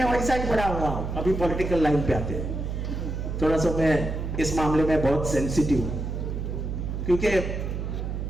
वैसा ही पढ़ा हुआ हूं। अभी पॉलिटिकल लाइन पे आते हैं, थोड़ा सा मैं इस मामले में बहुत सेंसिटिव हूं, क्योंकि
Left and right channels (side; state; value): right; noise; hum, 4 dB below the sound